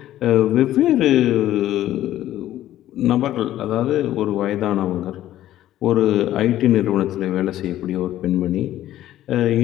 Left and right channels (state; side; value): quieter; right; 13.3 dB